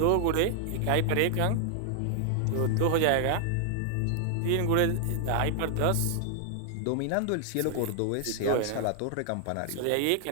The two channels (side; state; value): both; different; correlation 0.00